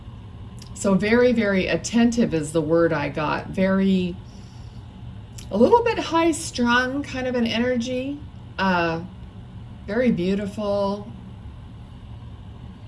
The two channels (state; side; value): identical; both; correlation 1.00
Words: so very, very attentive is the word I got. A little bit high strung kind of an energy. Very beautiful.